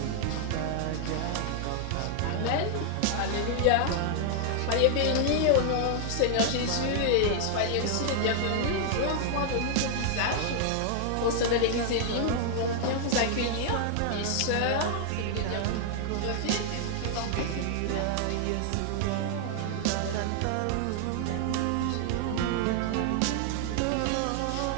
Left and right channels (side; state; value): both; different; correlation 0.00